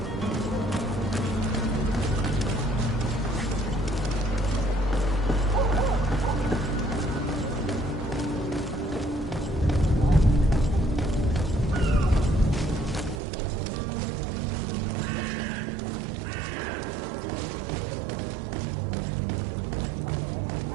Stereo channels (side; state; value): left; drops out; at 13.2 s